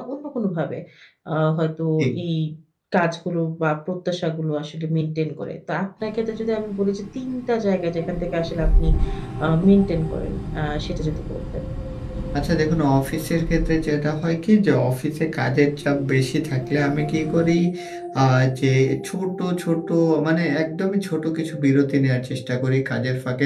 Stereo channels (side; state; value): both; identical; correlation 1.00